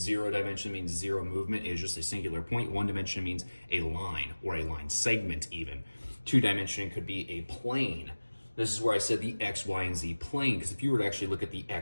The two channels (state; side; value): inverted; both; correlation -1.00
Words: dimension means 0 movement is just a singular point. 1 dimension means a line or a line segment even. 2 dimension could be a plane. This is where I said the X, Y, and Z plane, because if you were to actually look at the